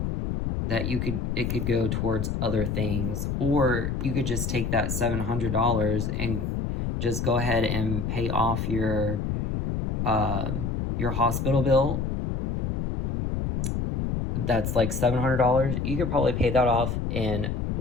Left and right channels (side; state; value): left; noise; rumble, 2 dB below the sound